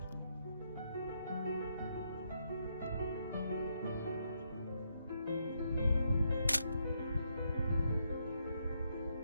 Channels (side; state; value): both; inverted; correlation -0.77